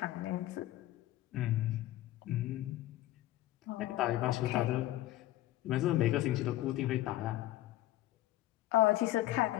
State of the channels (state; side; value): quieter; right; 15.1 dB